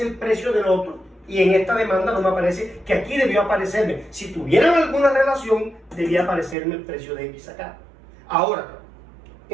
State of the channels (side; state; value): left; drops out; at 6.6 s